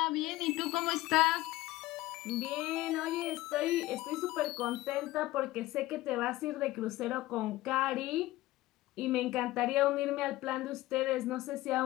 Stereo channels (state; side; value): quieter; right; 17.5 dB